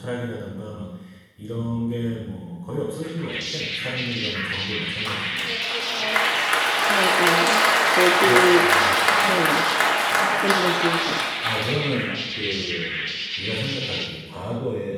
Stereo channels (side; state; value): both; identical; correlation 1.00